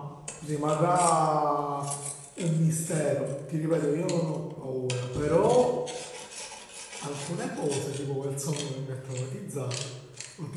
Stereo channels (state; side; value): identical; both; correlation 1.00